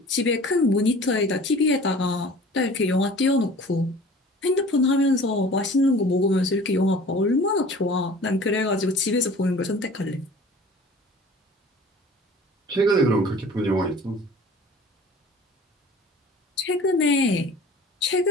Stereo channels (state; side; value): normal; both; correlation 0.45